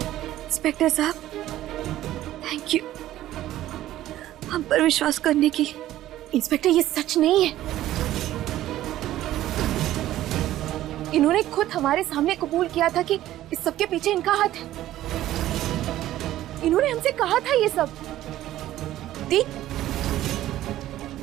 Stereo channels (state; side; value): quieter; left; 13.9 dB